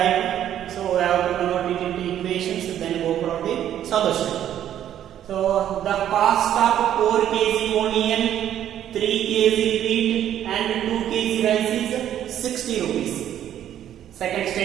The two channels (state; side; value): quieter; left; 10.9 dB